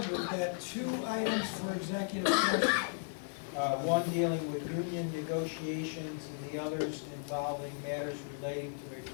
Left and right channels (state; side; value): silent; right; digital silence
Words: we've got 2 items for executive session. One dealing with union negotiations and the others involving matters relating to a